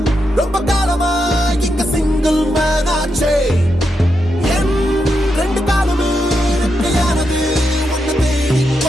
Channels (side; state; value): both; normal; correlation 0.84